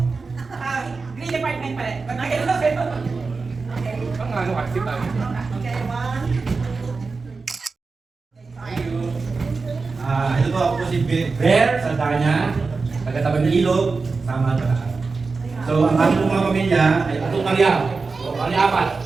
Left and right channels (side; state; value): left; quieter; 4.3 dB